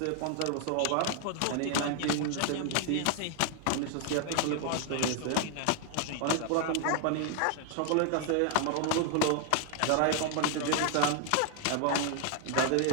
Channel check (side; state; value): both; different; correlation 0.00